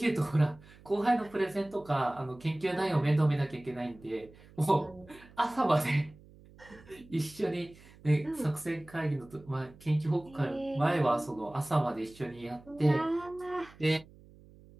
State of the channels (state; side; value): noise; right; hum, 23 dB below the sound